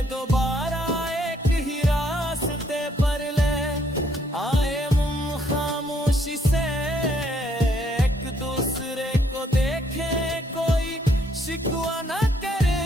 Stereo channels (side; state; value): both; normal; correlation 0.69